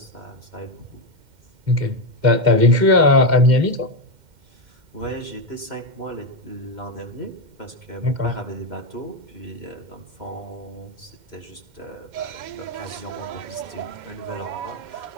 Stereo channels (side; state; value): left; late; 2.1 ms